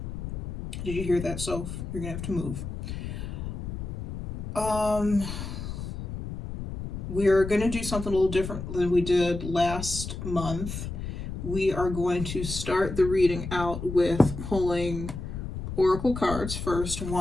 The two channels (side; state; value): left; noise; rumble, 7 dB below the sound